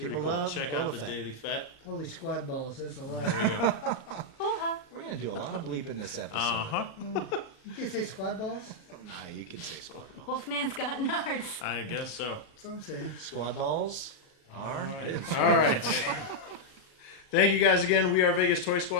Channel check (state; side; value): late; right; 36 ms